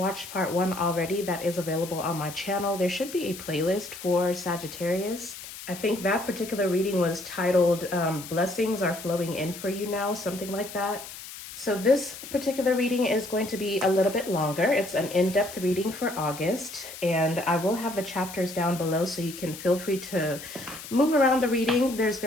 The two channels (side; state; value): left; noise; hiss, 13 dB below the sound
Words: part 1 already, that is available on my channel. There should be a playlist for Sagittarius. I think that particular reading was titled Blessings Are Flowing In For You Now, something like that. So this particular reading is going to be a little bit longer. It's an in-depth reading for August, and I will have the chapters down below so you can feel free to move around the reading. There's